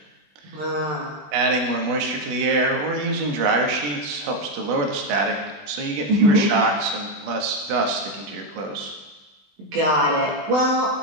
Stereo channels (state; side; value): late; left; 21 ms